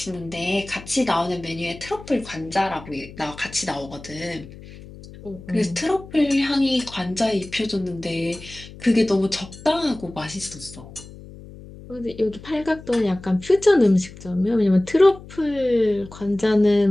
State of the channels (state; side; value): noise; left; hum, 17 dB below the sound